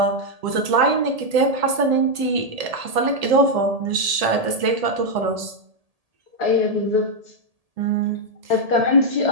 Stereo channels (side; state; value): left; late; 1.8 ms